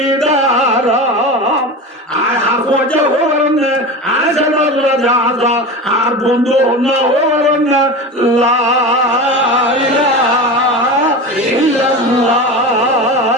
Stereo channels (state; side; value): normal; both; correlation 0.27